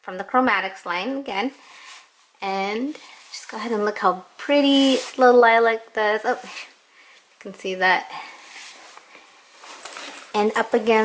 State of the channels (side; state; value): both; identical; correlation 1.00